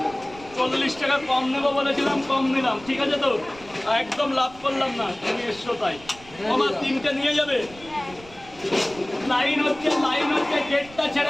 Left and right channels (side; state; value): right; noise; rumble, 21 dB below the sound